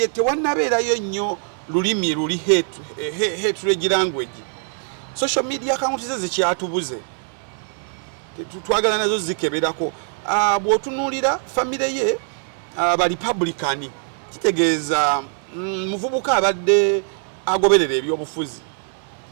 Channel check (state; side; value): silent; left; 61 dB below the other